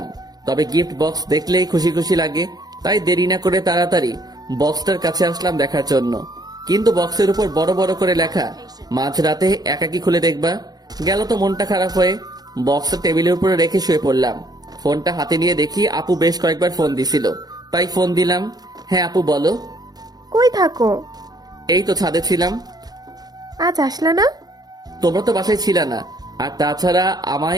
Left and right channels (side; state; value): left; late; 0.19 ms